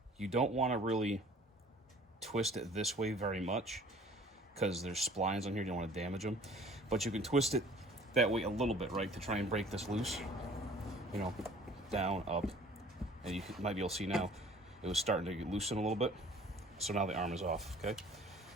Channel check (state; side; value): normal; both; correlation 0.51